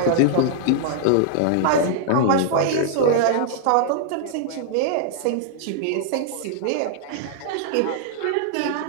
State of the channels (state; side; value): different; both; correlation -0.01